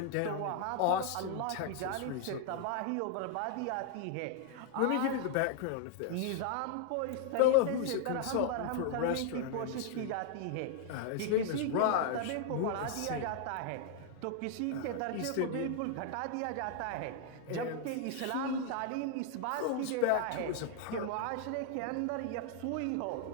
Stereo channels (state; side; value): different; both; correlation 0.00